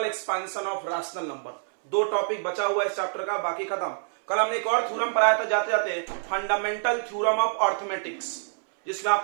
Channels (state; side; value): silent; left; 60 dB below the other